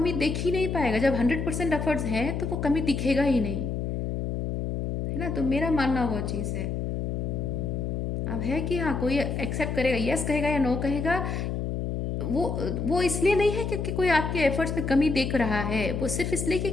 देख ही नहीं पाएगा। जब 100% एफर्ट्स हैं तो वो कमी दिखेगा ही नहीं, है ना। तो मेरा मानना वो चीज़ है। अब है कि हाँ, कोई एक्सेप्ट करेगा, यस कहेगा या नो कहेगा, वो वो इसलिए नहीं है क्योंकि कोई आपके एफर्ट्स में कमी देख रहा है, वो सिर्फ इसलिए कि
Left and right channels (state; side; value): noise; left; hum, 2 dB below the sound